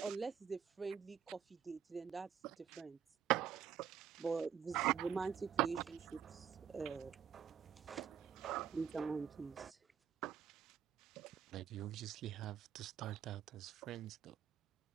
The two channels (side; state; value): left; quieter; 8.4 dB